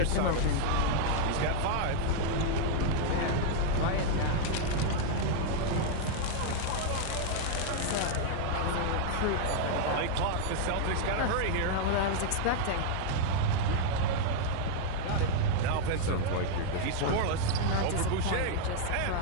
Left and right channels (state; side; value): different; both; correlation 0.00